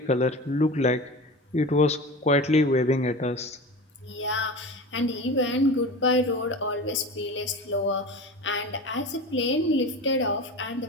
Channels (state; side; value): normal; both; correlation 0.32